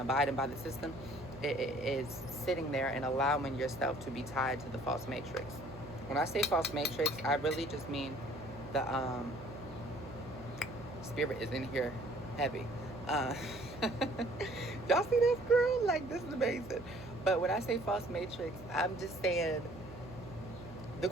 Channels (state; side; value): noise; right; hum, 17 dB below the sound